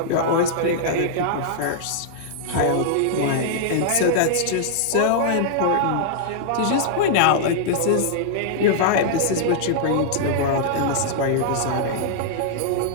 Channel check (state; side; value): different; both; correlation -0.01